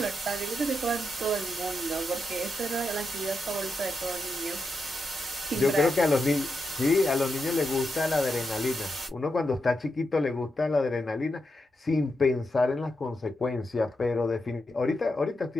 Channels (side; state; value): both; normal; correlation 0.86